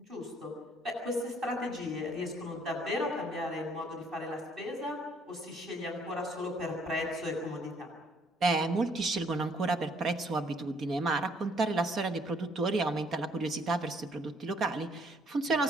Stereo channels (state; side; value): normal; both; correlation 0.65